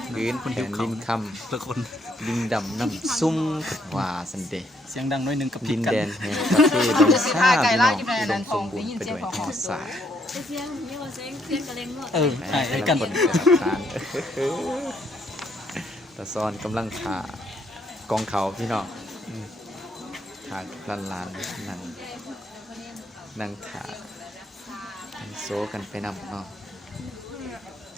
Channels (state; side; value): normal; both; correlation 0.71